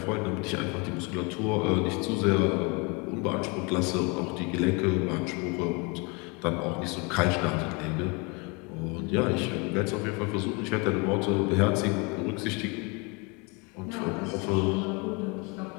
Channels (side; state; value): right; quieter; 30.3 dB